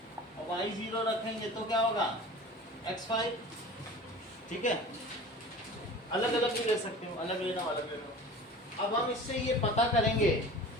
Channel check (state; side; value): normal; both; correlation 0.38